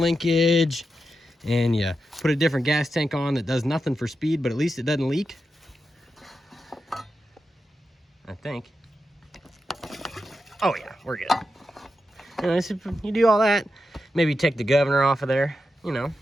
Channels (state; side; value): normal; both; correlation 0.88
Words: linkage, and you put a different gas tank on that does nothing for speed, but at least it doesn't leak. I think. Oh yeah, we're good. You know, so you do all that, maybe take the governor off of there, you know,